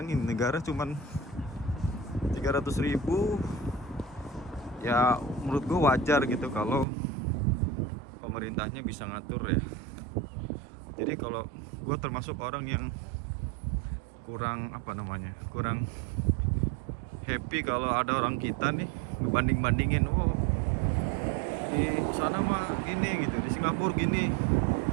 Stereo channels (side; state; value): left; drops out; at 6.9 s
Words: negara cuman 300.000. Ya menurut gue wajar gitu kalau pemerintahnya bisa ngatur ya. Jadi kalau gue termasuk orang yang kurang apa namanya, kurang happy kalau ada orang kita nih ngebanding-bandingin, oh di sana mah gini gitu, di Singapura gini.